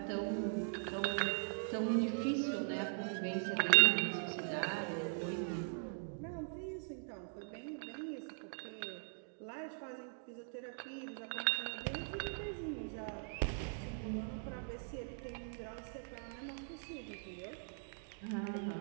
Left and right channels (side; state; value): left; silent; digital silence